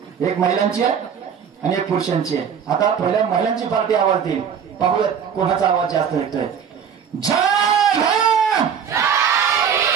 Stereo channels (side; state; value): left; quieter; 7.6 dB